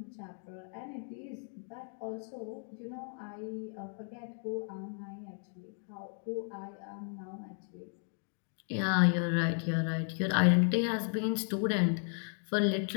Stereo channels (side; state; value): right; silent; 55 dB below the other